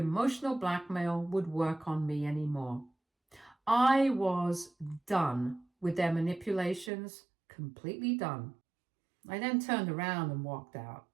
blackmail would work on me anymore. I was done with their manipulations, completely done. I then turned around and walked out.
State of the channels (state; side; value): drops out; left; at 6.9 s